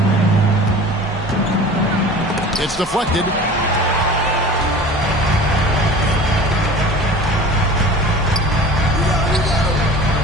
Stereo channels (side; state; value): both; normal; correlation 0.40